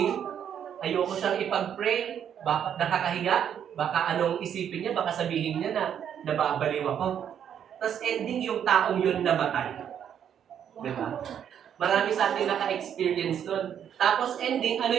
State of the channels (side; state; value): left; quieter; 9.0 dB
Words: ayoko siyang ipag-pray, baka nakakahiya, baka anong isipin niya, baka sabihin niya na nababaliw ako. Tapos ending, yung taong yun namatay. Diba? Marami sa atin naka-experience nun. Tapos ending, ano